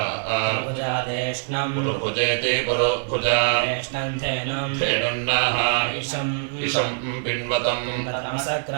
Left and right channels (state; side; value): silent; left; 63 dB below the other